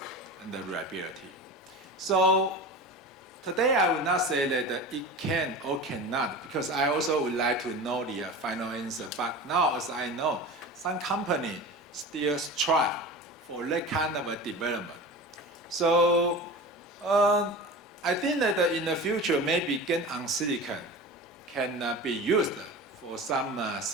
and the reliability. So today I would not say that it can or cannot, because I also would like to know the final answer. But now, as I know, some companies still strive for that kind of a development. So I think that in the future, maybe GaN on silicon can be used for some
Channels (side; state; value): both; normal; correlation 0.32